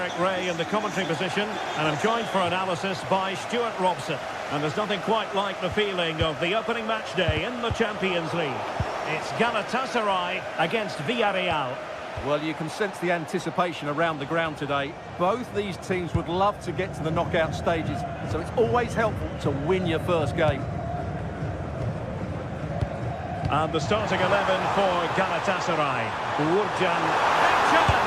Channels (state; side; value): identical; both; correlation 1.00